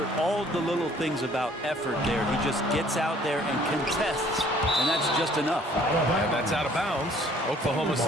all the little things about effort there. He just gets out there and contests, and that's just enough. And that's out of bounds. Oklahoma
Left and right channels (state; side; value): normal; both; correlation 0.57